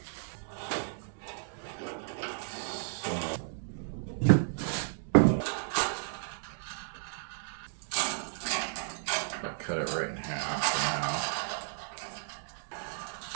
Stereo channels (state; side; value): silent; left; digital silence